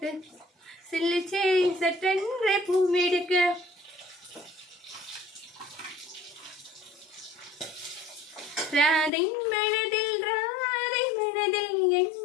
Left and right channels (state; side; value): drops out; right; at 9.1 s